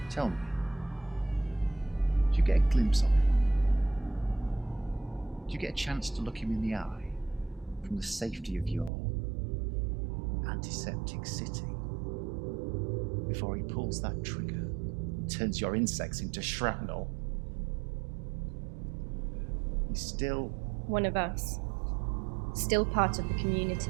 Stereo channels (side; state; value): left; drops out; at 8.9 s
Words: Tell me, did you get a glimpse of him? Did you get a chance to look him in the eye from the safety of your antiseptic city before he pulls that trigger and turns your insects into shrapnel? He's still One of us. Still part of the